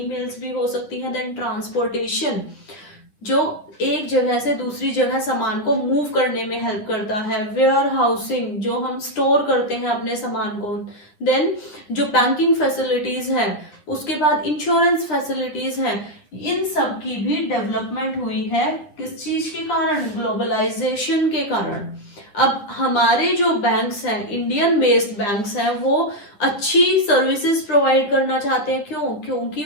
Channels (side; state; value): right; late; 10 ms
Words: भी हो सकती है। देन ट्रांसपोर्टेशन, जो एक जगह से दूसरी जगह सामान को मूव करने में हेल्प करता है। वेयर हाउसिंग, जो हम स्टोर करते हैं अपने सामान को। देन जो बैंकिंग फैसिलिटीज है, उसके बाद इंश्योरेंस फैसिलिटीज है, इन सब की भी डेवलपमेंट हुई है। किस चीज के कारण? ग्लोबलाइजेशन के कारण। अब हमारे जो बैंक्स हैं, इंडियन बेस्ड बैंक्स हैं, वो अच्छी सर्विसेज प्रोवाइड करना चाहते हैं। क्यों? क्योंकि